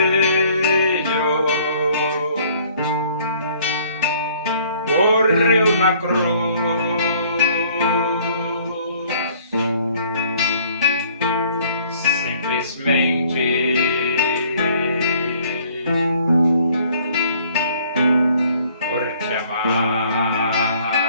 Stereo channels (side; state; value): both; inverted; correlation -0.58